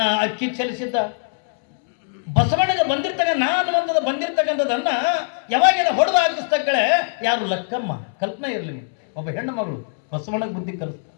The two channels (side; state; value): right; silent; 63 dB below the other